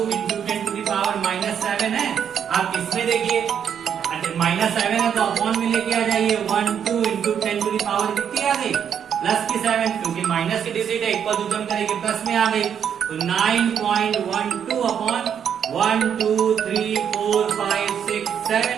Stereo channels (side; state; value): left; quieter; 8.3 dB